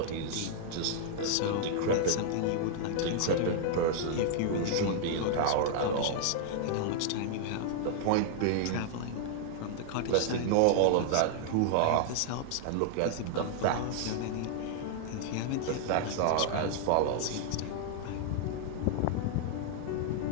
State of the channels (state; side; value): different; both; correlation -0.01